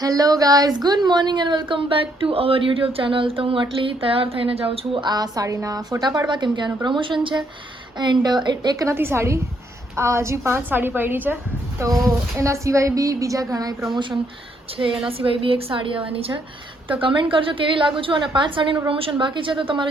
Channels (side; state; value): both; normal; correlation 0.72